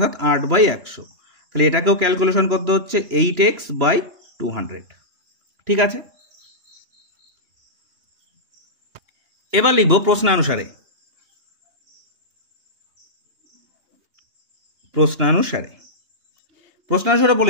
8/100, তাহলে এটাকেও ক্যালকুলেশন করতে হচ্ছে 8x/200। ঠিক আছে, এবার লিখব প্রশ্নানুসারে। প্রশ্নানুসারে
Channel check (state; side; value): late; left; 2.9 ms